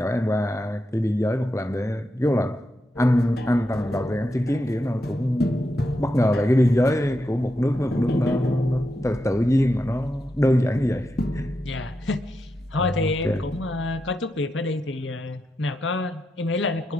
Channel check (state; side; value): normal; both; correlation 0.86